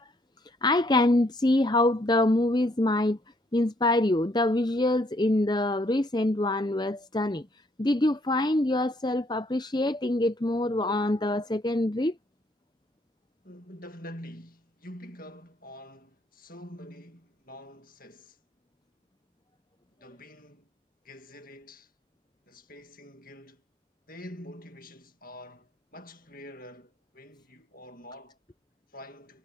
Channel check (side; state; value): both; normal; correlation 0.68